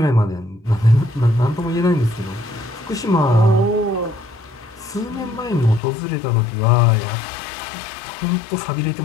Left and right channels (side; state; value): right; drops out; at 5.8 s